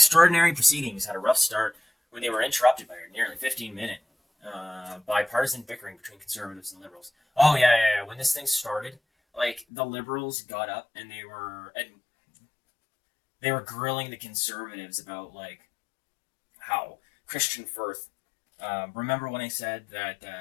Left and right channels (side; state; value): right; drops out; at 9.7 s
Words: proceedings had a rough start when they were interrupted by a nearly 15-minute bipartisan bickering between conservatives and liberals. Oh yeah. When this thing started, like, the liberals got up and they were grilling the conservatives about, like, how Kristian Firth. Remember when I said that